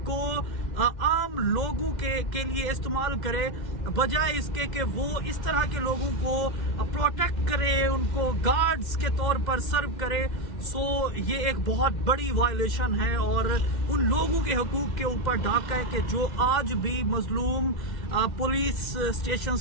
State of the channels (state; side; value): late; right; 2.1 ms